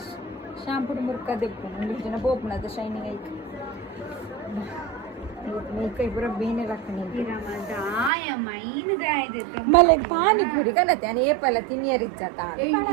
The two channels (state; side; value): drops out; left; at 8.1 s